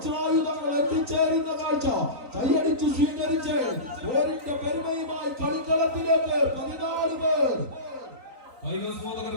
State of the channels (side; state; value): left; late; 3.9 ms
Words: എത്തിച്ചേരുന്ന കാഴ്ച കൈയടിച്ചു സ്വീകരിച്ച് പേരിന്റെ പെരുമയുമായി കളിക്കളത്തിലേക്ക് 14 പേർ കൈകസ്മോദകർ